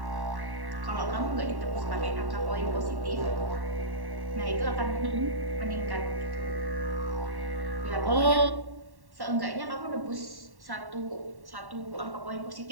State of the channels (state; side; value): late; left; 1.1 ms